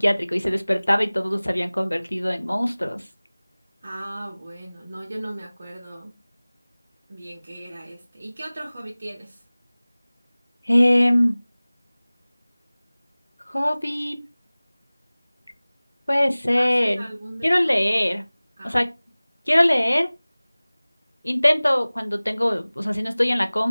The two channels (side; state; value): both; inverted; correlation -0.99